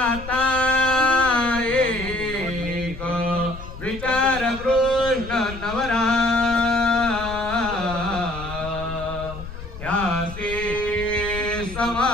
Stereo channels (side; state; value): left; noise; rumble, 12 dB below the sound